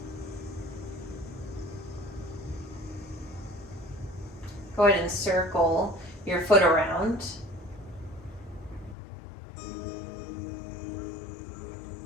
Go ahead and circle your foot around.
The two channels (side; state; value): right; drops out; at 9.0 s